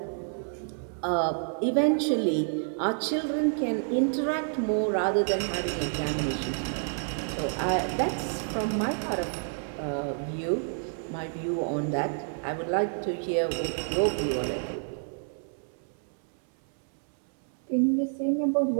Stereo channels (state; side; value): silent; left; 59 dB below the other